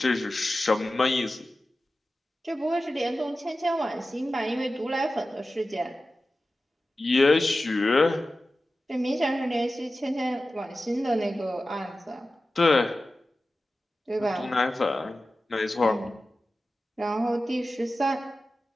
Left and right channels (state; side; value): normal; both; correlation 0.94